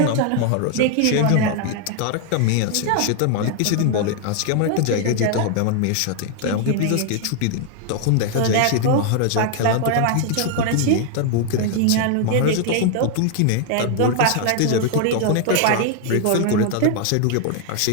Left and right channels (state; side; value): different; both; correlation 0.00